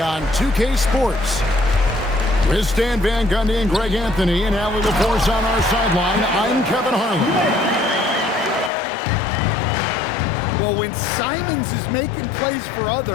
on 2K Sports. With Stan Van Gundy and Greg Anthony and Allie LaForce on our sideline, I'm Kevin Harlan. Well, when Simons is making plays for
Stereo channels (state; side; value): drops out; right; at 8.7 s